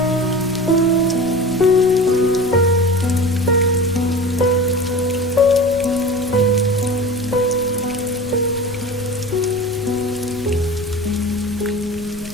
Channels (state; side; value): noise; left; rumble, 17 dB below the sound